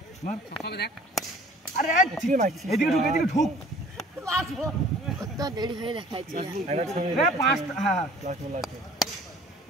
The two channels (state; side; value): normal; both; correlation 0.51